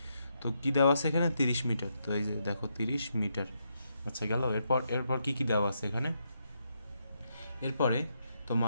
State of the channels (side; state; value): both; inverted; correlation -0.80